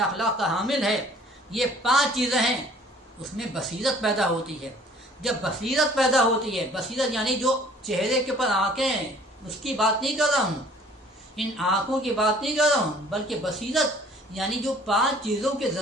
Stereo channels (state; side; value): normal; both; correlation 0.53